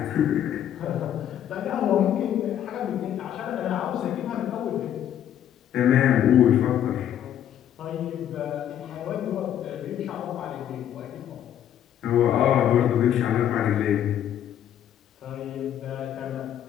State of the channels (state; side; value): quieter; right; 10.4 dB